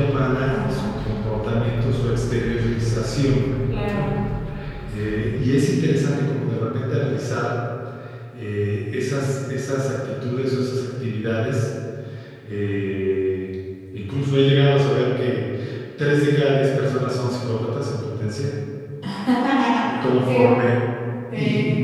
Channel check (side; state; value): both; identical; correlation 1.00